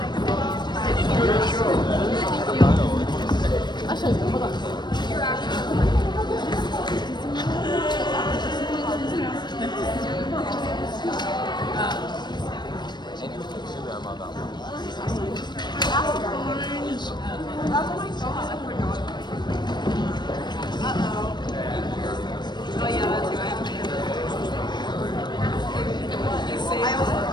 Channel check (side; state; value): right; late; 0.21 ms